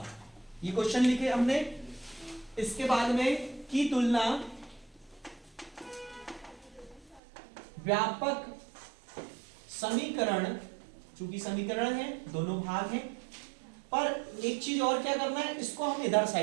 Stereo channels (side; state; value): left; drops out; at 7.2 s